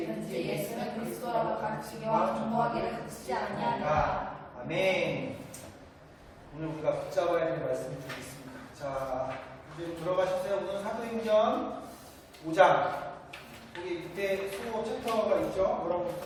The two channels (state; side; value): identical; both; correlation 1.00